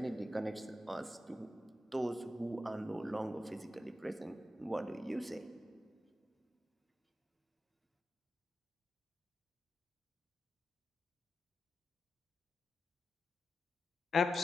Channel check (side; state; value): both; normal; correlation 0.90